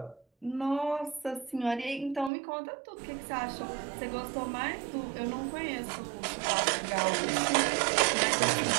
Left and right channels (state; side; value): drops out; left; at 2.3 s